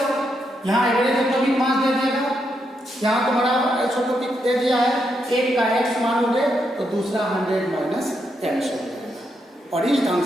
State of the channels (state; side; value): normal; both; correlation 0.81